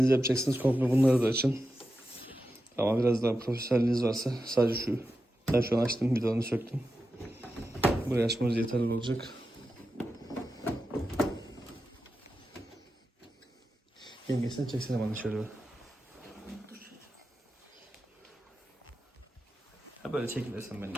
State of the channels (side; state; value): both; normal; correlation 0.90